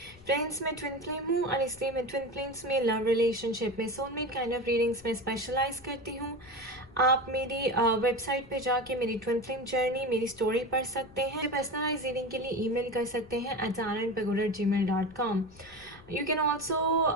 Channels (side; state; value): left; noise; rumble, 23 dB below the sound